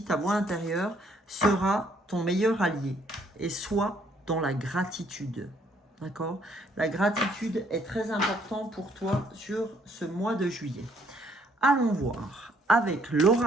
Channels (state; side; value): normal; both; correlation 0.66